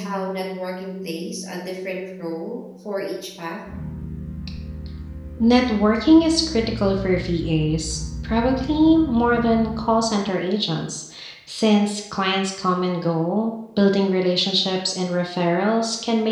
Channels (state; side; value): identical; both; correlation 1.00